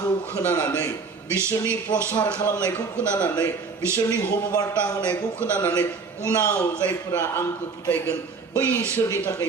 खोनानानै बिसोरनि प्रसार खालामनायखौ खोनानानै बिसोरनि हबबार्ता होनायखौ खोनानानै उनाव जायफोरा आंखौ फोथायगोन बैसोरनि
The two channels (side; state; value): left; quieter; 4.7 dB